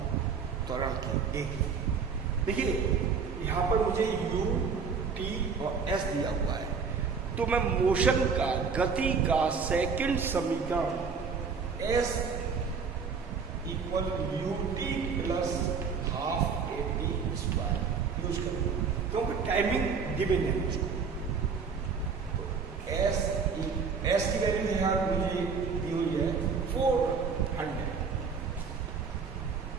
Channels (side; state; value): left; quieter; 5.6 dB